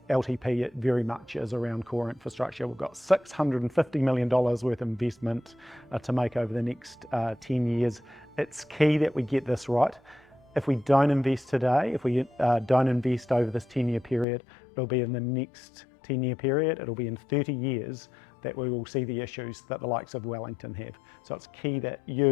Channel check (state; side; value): drops out; right; at 14.2 s